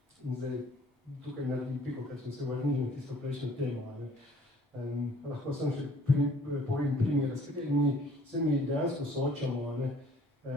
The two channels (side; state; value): both; normal; correlation 0.56